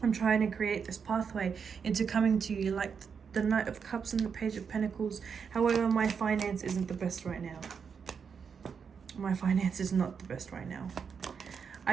I'm trying to create this pathway into coming to you like the Knight of Cups and the Page of Pentacles. However, my finance isn't the best right now. My finance is not the best right now.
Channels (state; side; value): quieter; left; 6.4 dB